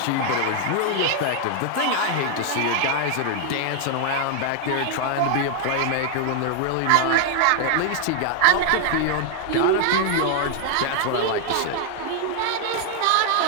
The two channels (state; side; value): different; both; correlation 0.00